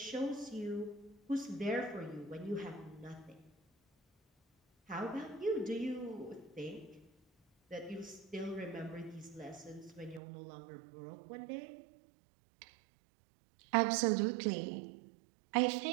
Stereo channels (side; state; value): left; drops out; at 10.2 s